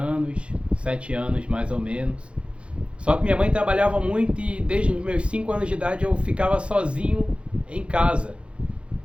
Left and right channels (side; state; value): left; late; 0.059 ms